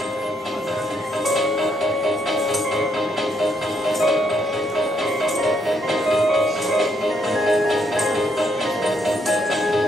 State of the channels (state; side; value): normal; both; correlation 0.74